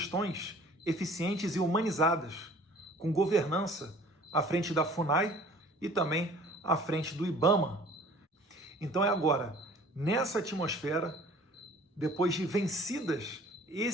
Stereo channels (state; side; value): normal; both; correlation 0.50